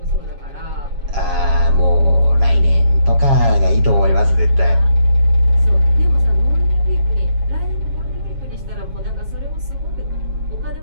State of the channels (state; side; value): late; left; 7.3 ms